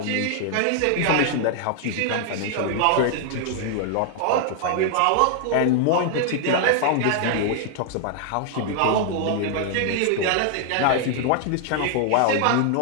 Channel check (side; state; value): both; different; correlation 0.00